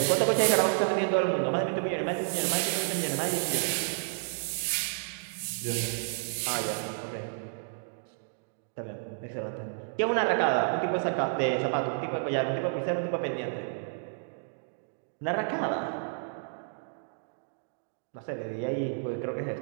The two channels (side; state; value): left; silent; digital silence